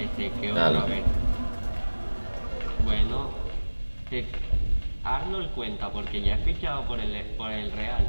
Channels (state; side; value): inverted; both; correlation -1.00